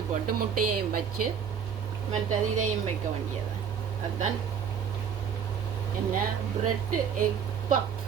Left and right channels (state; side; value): quieter; left; 7.4 dB